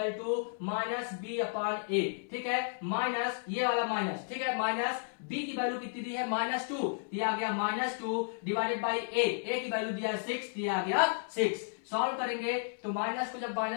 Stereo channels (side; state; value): right; silent; 56 dB below the other